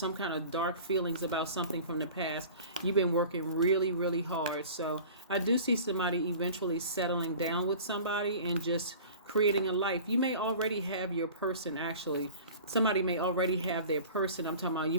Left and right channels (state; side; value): inverted; both; correlation -0.41